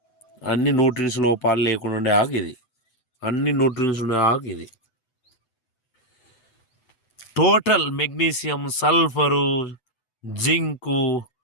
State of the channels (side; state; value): right; late; 7.9 ms